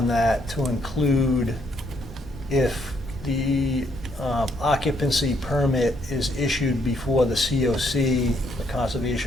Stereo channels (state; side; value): normal; both; correlation 0.71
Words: that to include if the occupancy permit is issued before the COC, the